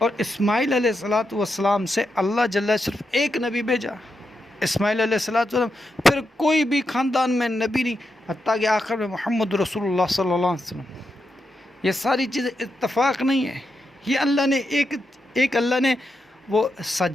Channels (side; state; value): both; normal; correlation 0.85